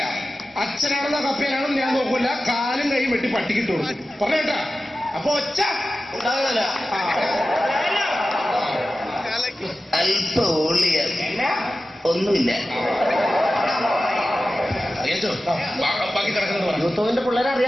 അച്ഛനാണെന്നോ കപ്പയാണെന്ന് ഞാൻ നോക്കൂല. കാലും കൈയും വെട്ടി പട്ടിക്കിട്ട് കൊടുക്കും. പറഞ്ഞേട്ടാ. അപ്പൊ ഒച്ച ഉണ്ടാവില്ല. അല്പ ഒന്നുമില്ല. ബാക്കി കിടക്കുന്നത് യൂത്തോവിന്റെ പിള്ളേരെ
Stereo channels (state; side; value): normal; both; correlation 0.94